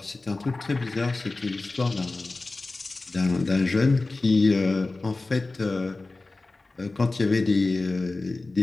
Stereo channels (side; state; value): right; quieter; 3.3 dB